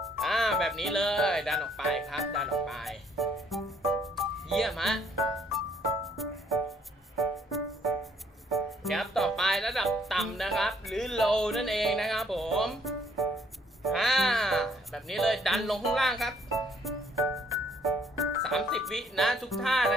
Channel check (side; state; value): both; normal; correlation 0.66